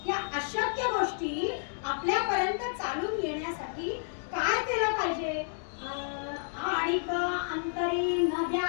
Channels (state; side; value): silent; right; digital silence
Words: या अशक्य गोष्टी आपल्यापर्यंत चालून येण्यासाठी काय केलं पाहिजे? आणिक अंतरी न